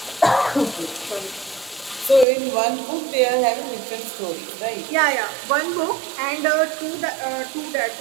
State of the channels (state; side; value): drops out; left; at 2.2 s